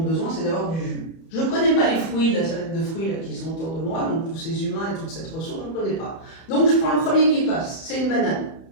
c'est d'avoir du jus. Je ne connais pas les fruits, la salade de fruits là, qui sont autour de moi, donc tous ces humains et toute cette ressource, je ne connais pas. Donc je prends le premier qui passe, c'est une banane.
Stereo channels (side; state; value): right; late; 31 ms